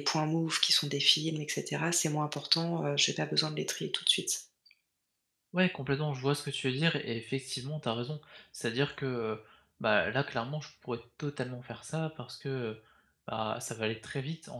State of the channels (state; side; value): identical; both; correlation 1.00